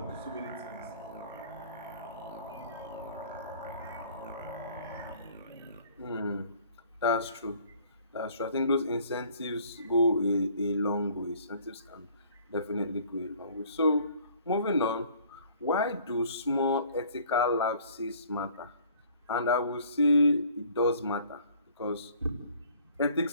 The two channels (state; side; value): inverted; both; correlation -0.55